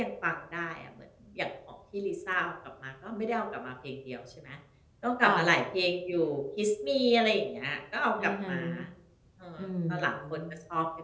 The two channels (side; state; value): both; identical; correlation 1.00